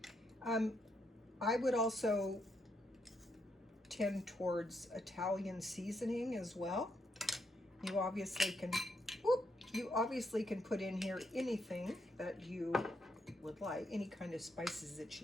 I would also tend towards Italian seasoning as well. You obviously can put in here anything that you would like, any kind of spices that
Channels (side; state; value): both; normal; correlation 0.78